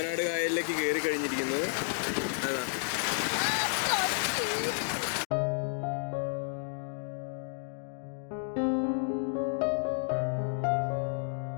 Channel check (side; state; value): right; silent; digital silence